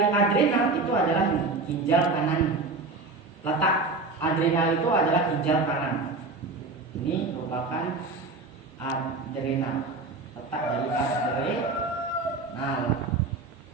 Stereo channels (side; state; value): left; quieter; 3.7 dB